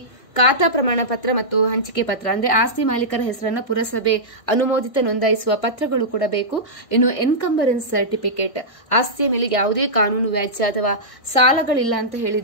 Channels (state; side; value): late; right; 1.6 ms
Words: ಖಾತಾ ಪ್ರಮಾಣ ಪತ್ರ ಮತ್ತು ಹಂಚಿಕೆ ಪತ್ರ ಅಂದ್ರೆ ಆಸ್ತಿ ಮಾಲೀಕರ ಹೆಸರನ್ನ ಪುರಸಭೆ ಅನುಮೋದಿತ ನೋಂದಾಯಿಸುವ ಪತ್ರಗಳು ಕೂಡ ಬೇಕು. ಇನ್ನು ಎನ್ಕಂಬರೆನ್ಸ್ ಸರ್ಟಿಫಿಕೇಟ್, ಆಸ್ತಿಯ ಮೇಲೆ ಯಾವುದೇ ಕಾನೂನು ವ್ಯಾಜ್ಯ ಅಥವಾ ಸಾಲಗಳಿಲ್ಲ ಅಂತ